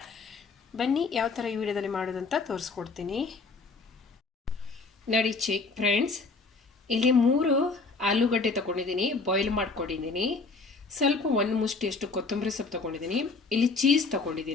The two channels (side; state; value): right; quieter; 4.0 dB